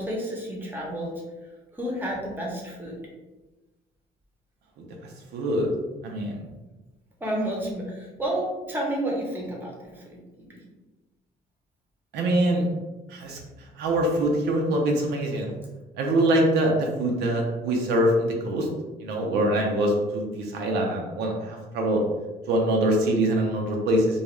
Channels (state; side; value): normal; both; correlation 0.51